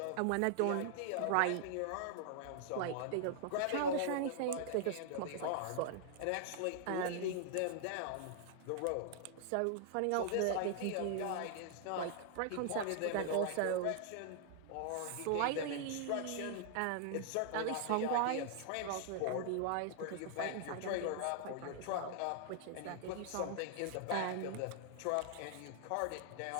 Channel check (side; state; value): both; different; correlation -0.01